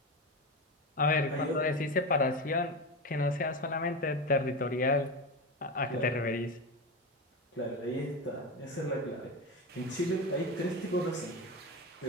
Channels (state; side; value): normal; both; correlation 0.20